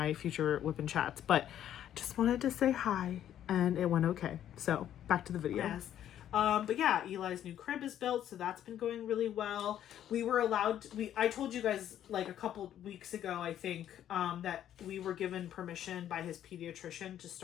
future whipping chats, but just wanted to say hi, and it went okay. So back to the video. Yes. But yeah, Eli's new crib is built, so that's been going really well. We were allowed I told you guys like a couple weeks ago, I think, that we were given permission by his pediatrician to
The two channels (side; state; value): right; quieter; 10.9 dB